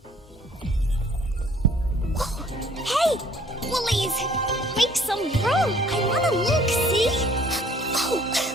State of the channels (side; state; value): both; normal; correlation 0.58